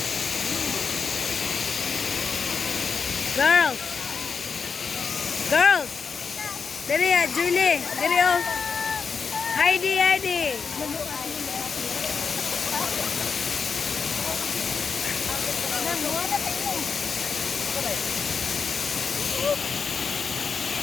Girls! Girls! Dali ya, Julie! Dali oh! Heidi!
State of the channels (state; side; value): quieter; right; 5.6 dB